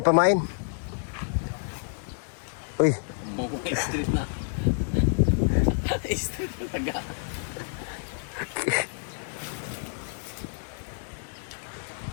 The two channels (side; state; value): right; silent; digital silence